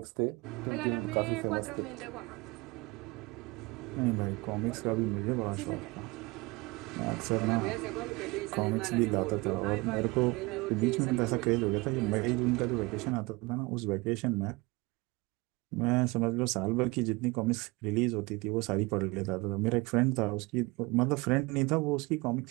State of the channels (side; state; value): left; quieter; 24.2 dB